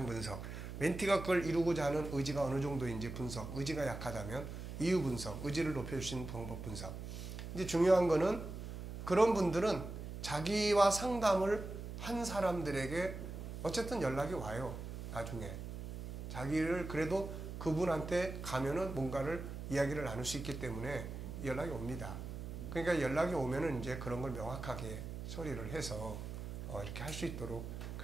분석, 멘티가 그걸 이루고자 하는 의지가 어느 정도인지 분석, 의지가 약하다면 이유 분석, 의지를 높여줄 수 있는 방법 분석. 이제 중요한 거는 그런 분들은 자기와 상담을 한 사람들에게 어쨌든 연락이 와요. 나중에. 자기를 그래도 그분한테 가면은 뭔가를 이야기를 나눌 수 있기 때문에 연락이 옵니다. 그러니까 연락이 오면은 이제 그런 걸 명확하게 처리를 해서 이렇게 할 수 있도록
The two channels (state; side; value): noise; right; hum, 8 dB below the sound